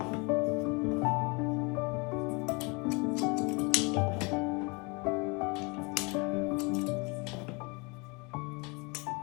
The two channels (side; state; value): right; quieter; 29.5 dB